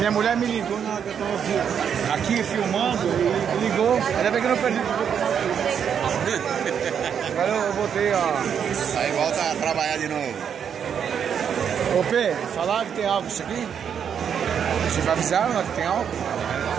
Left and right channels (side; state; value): left; quieter; 7.9 dB